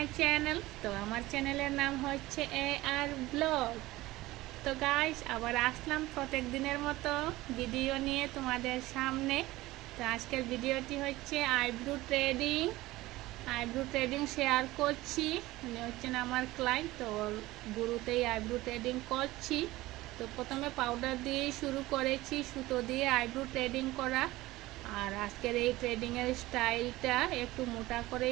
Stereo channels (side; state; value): left; quieter; 18.3 dB